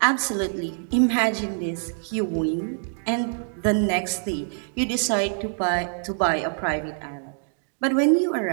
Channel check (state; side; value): silent; left; digital silence